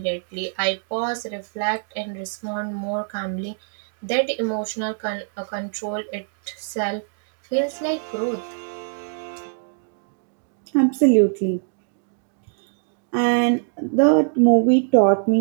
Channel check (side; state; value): left; silent; digital silence